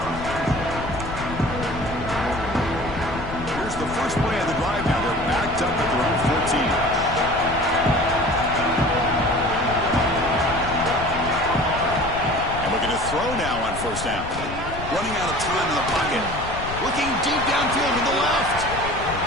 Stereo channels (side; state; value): left; noise; rumble, 10 dB below the sound